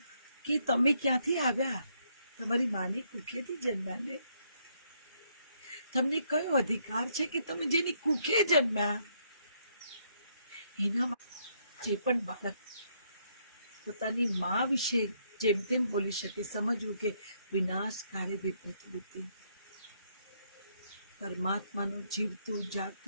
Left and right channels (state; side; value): inverted; both; correlation -0.72